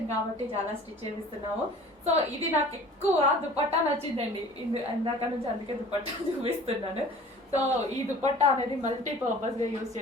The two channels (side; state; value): both; normal; correlation 0.46